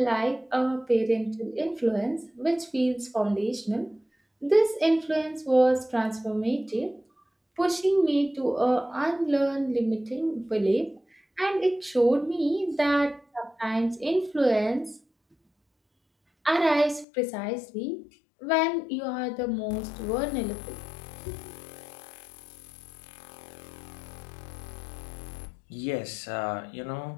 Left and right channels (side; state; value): right; drops out; at 17.1 s